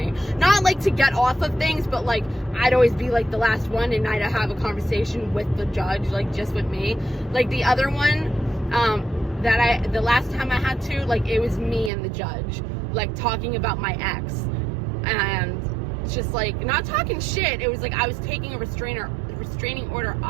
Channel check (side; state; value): left; drops out; at 11.9 s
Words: Not, like, to get off of things, but, like, I'd always be, like, the last one, and I'd have a conversation with the judge, like, just with me. Like, the other one, the last time I had to, like, it was me and the judge, like, talking about my ex. And it's just, like, not talking shit. It was like I was taking a restraining order